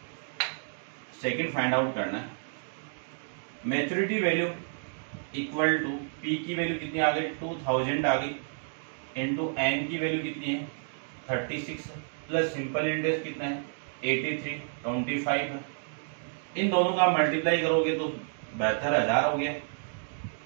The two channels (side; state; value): left; silent; digital silence